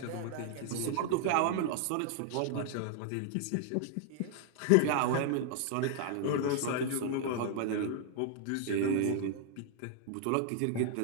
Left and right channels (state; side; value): different; both; correlation 0.00